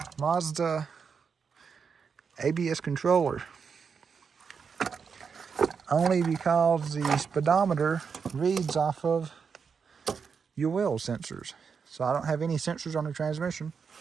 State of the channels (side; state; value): left; quieter; 6.0 dB